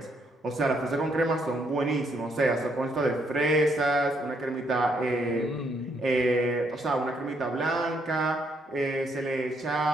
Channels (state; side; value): normal; both; correlation 0.73